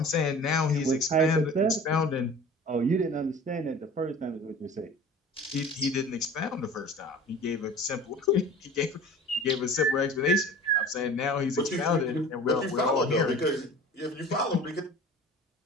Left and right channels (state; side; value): normal; both; correlation 0.41